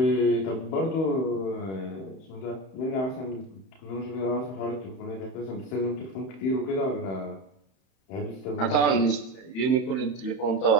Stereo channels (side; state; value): right; late; 31 ms